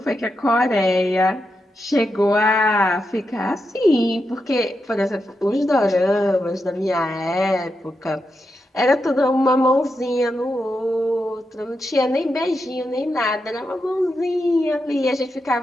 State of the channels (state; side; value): normal; both; correlation 0.86